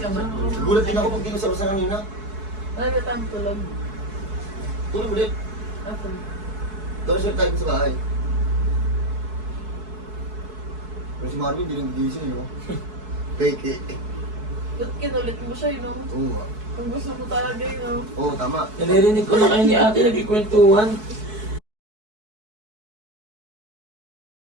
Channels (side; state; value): left; late; 4.6 ms